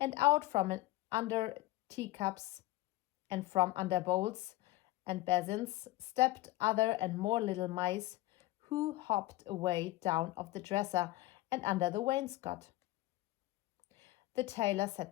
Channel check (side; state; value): right; quieter; 17.7 dB